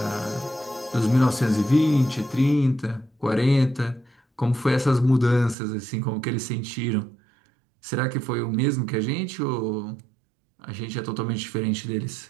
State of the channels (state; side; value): drops out; left; at 5.6 s